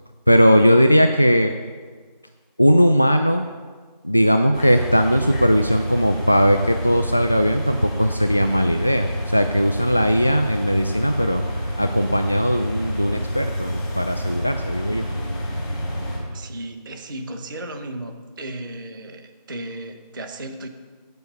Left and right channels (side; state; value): both; inverted; correlation -0.93